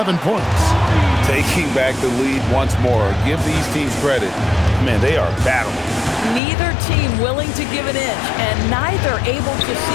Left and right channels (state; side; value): drops out; right; at 6.4 s